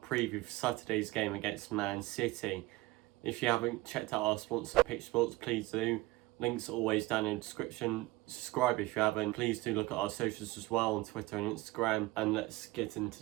for Saturday's game against Man City. If you haven't checked out our sponsor Pitch Sports, please do. Links are always down in the description. Subscribe if you haven't. Please do look at our socials as well on Twitter and Instagram. And let's get into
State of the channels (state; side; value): quieter; left; 19.6 dB